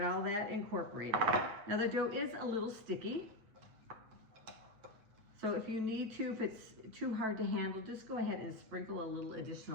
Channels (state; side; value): late; left; 9.1 ms